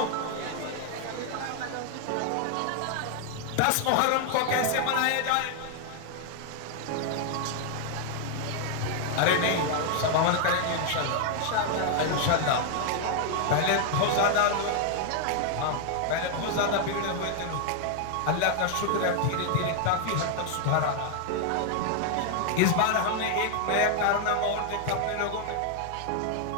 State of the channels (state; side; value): different; both; correlation 0.00